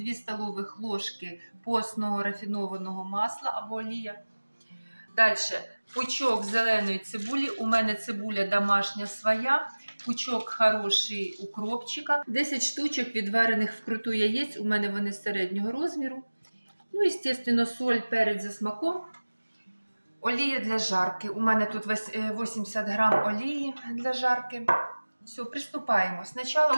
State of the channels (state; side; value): inverted; both; correlation -1.00